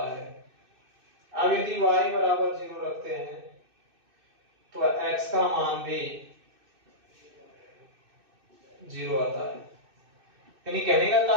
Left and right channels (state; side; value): late; left; 2.6 ms